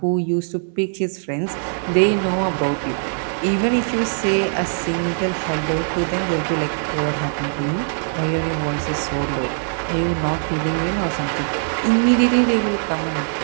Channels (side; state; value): left; silent; 64 dB below the other